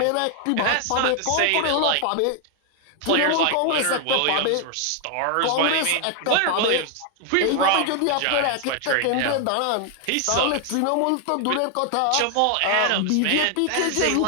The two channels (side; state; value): both; different; correlation 0.00